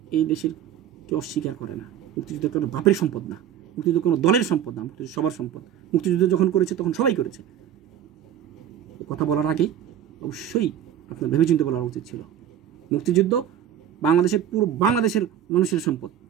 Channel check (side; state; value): left; quieter; 10.2 dB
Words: এই দেশের কেউ অস্বীকার করে না। মুক্তিযুদ্ধ কোনো বাপের সম্পদ না, মুক্তিযুদ্ধ কোনো দলের সম্পদ না, মুক্তিযুদ্ধ সবার সম্পদ। মুক্তিযুদ্ধ যখন করেছে তখন সবাই করেছে। কথা বলার আগে অবশ্যই আপনার ভেবেচিন্তে বলা উচিত ছিল। মুক্তিযুদ্ধ পুরো বাংলাদেশের মানুষের সম্পদ।